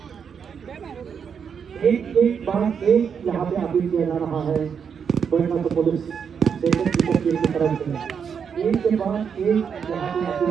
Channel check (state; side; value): quieter; left; 7.0 dB